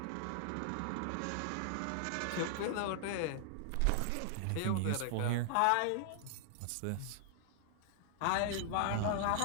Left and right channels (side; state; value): both; different; correlation -0.01